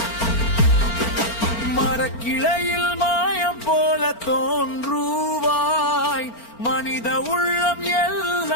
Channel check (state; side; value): late; right; 4.4 ms